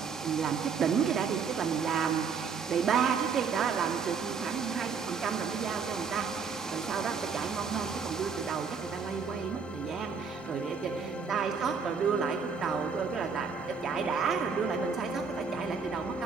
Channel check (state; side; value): quieter; left; 5.7 dB